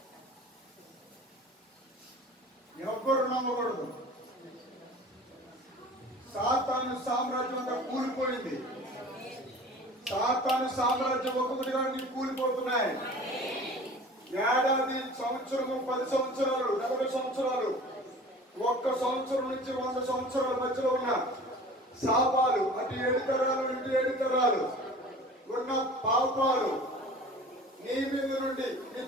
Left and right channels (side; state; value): both; normal; correlation 0.42